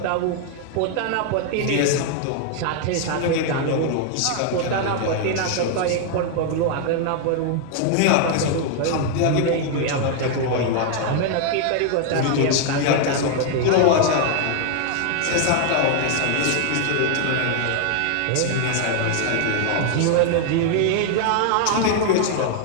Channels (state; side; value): different; both; correlation 0.00